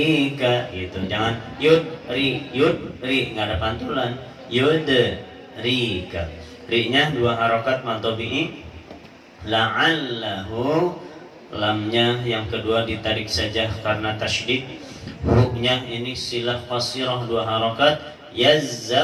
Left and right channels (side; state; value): both; identical; correlation 1.00